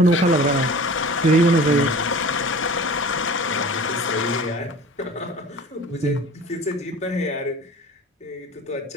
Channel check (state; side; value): normal; both; correlation 0.41